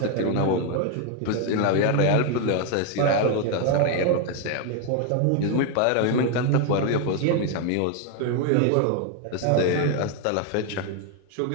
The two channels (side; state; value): both; different; correlation 0.01